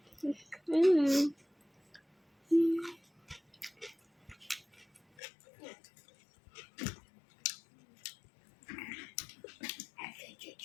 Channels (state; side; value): drops out; right; at 5.0 s